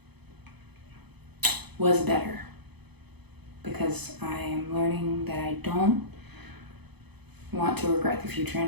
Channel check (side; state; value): left; late; 0.98 ms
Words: was better because I am learning that I don't want to regret the future